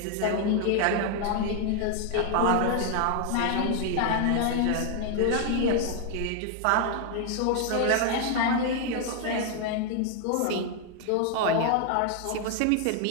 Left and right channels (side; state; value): both; different; correlation 0.00